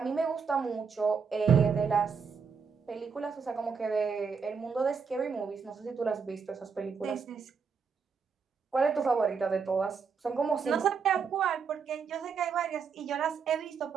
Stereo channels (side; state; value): left; quieter; 5.8 dB